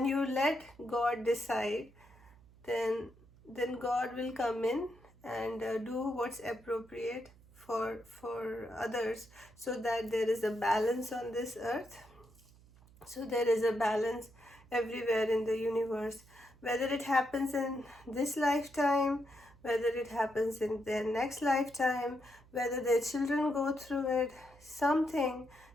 you let God decide, then God will come in and do what's appropriate for others, so that there is a balance on this earth. So there is a balance everywhere in the universe, whether it happens in this lifetime, whether it happens in their next lifetime, whether their children go through it. Something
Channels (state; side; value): noise; right; hum, 25 dB below the sound